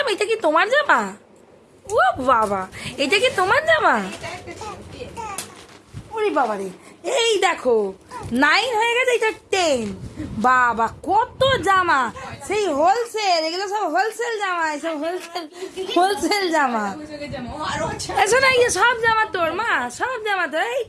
এটা কি তোমার জামা? ও বাবা, এটা কি তোমার জামা? ওরে বাবা রে, এই দেখো 9 হয়ে গেছে, এটা 10। বাবা কত জামা, সেই হোলসেল, এগুলো সব হোলসেল জামা, সব হোলসেল জামা। এসো না, ইয়ে সব জামা তোর মা, সব জামা তোর। এই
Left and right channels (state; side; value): identical; both; correlation 1.00